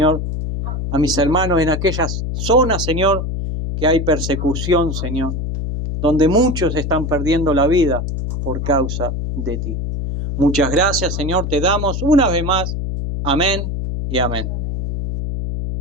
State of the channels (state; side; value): noise; left; hum, 3 dB below the sound